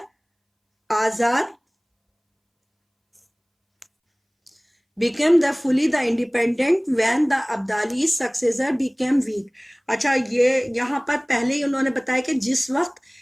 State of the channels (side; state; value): both; identical; correlation 1.00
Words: آزاد, became the fully the independent when the Abdali's successor became weak. اچھا یہ یہاں پر پہلے ہی انہوں نے بتایا کہ جس وقت